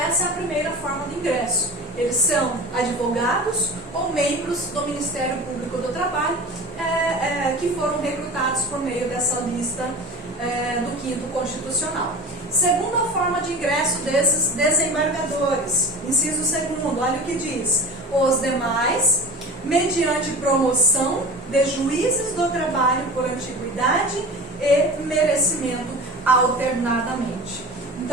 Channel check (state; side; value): normal; both; correlation 0.35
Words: é a primeira forma de ingresso. Eles são advogados ou membros do Ministério Público do Trabalho que foram recrutados por meio dessa lista do 5º Constitucional. Segunda forma de ingresso desses desembargadores, inciso 2º, olha o que diz: os demais, mediante promoção de juízes do trabalho por antiguidade e merecimento alternadamente.